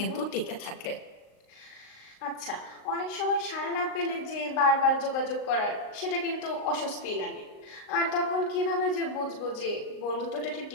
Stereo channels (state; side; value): late; right; 38 ms